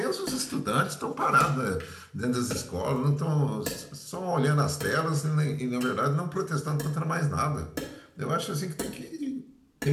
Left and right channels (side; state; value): both; identical; correlation 1.00